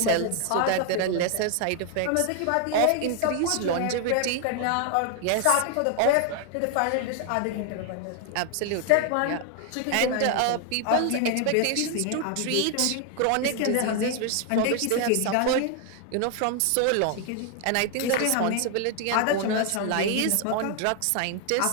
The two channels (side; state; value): both; different; correlation 0.00